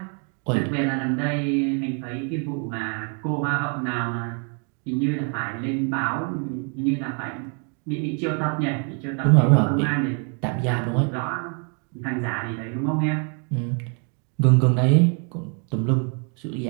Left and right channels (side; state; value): left; quieter; 39.4 dB